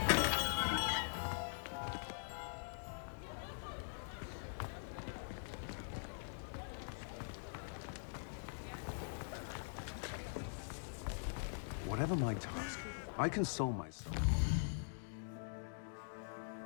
Whatever my task, I console myself.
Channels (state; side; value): silent; right; digital silence